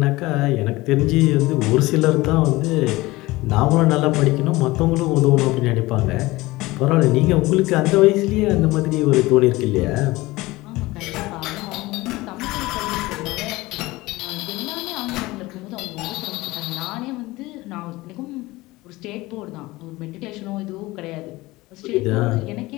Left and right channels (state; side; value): quieter; right; 20.0 dB